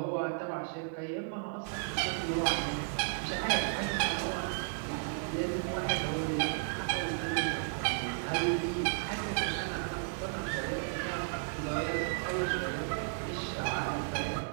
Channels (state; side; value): silent; left; digital silence